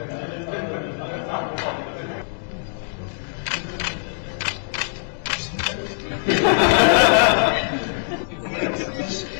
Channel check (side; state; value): right; silent; digital silence